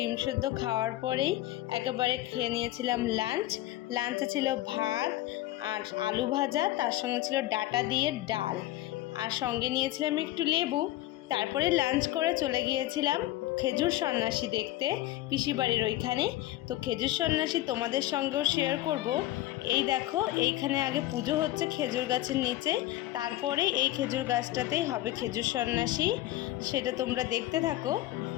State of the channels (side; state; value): right; quieter; 16.0 dB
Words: সেদ্ধ খাওয়ার পরেই একেবারে খেয়ে নিয়েছিলাম লাঞ্চে ছিল ভাত আর আলু ভাজা, তার সঙ্গে ছিল ডাঁটা দিয়ে ডাল, আর সঙ্গে নিয়েছিলাম একটু লেবু। তারপরে লাঞ্চ করে চলে গিয়েছিলাম খেজুর সন্ন্যাসী দেখতে, পিসির বাড়ির ওইখানে। তো খেজুর সন্ন্যাসী তোমাদের সঙ্গেও শেয়ার করব। এই দেখো, এইখানে আগে পুজো হচ্ছে খেজুর গাছের নিচে, তারপরে এই খেজুর গাছটাতেই হবে খেজুর সন্ন্যাসী। সেটা তোমরা দেখতে থাকো।